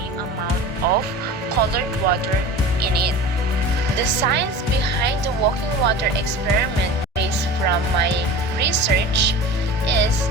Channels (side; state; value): both; normal; correlation 0.35